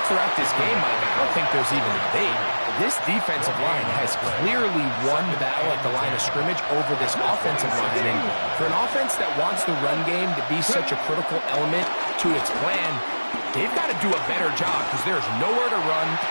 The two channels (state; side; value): inverted; both; correlation -1.00